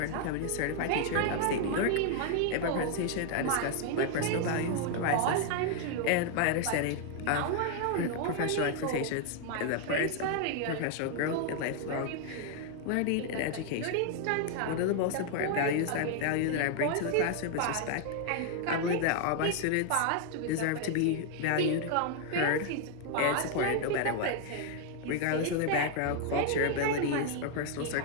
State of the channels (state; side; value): different; both; correlation 0.00